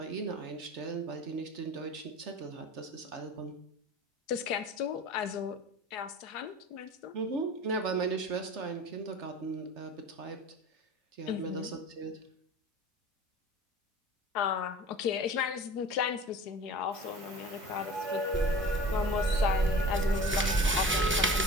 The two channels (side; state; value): both; normal; correlation 0.40